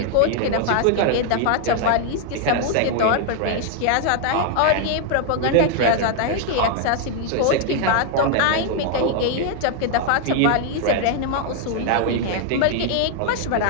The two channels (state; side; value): different; both; correlation 0.00